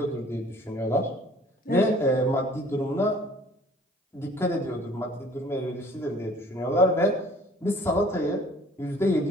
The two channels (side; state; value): both; normal; correlation 0.53